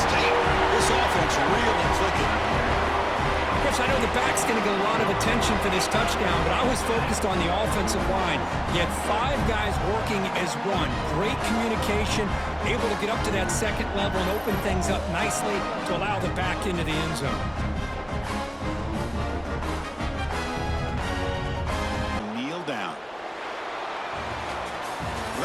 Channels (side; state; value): both; identical; correlation 1.00